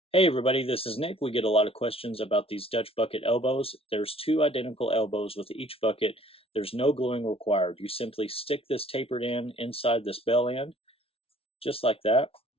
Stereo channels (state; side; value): late; right; 0.27 ms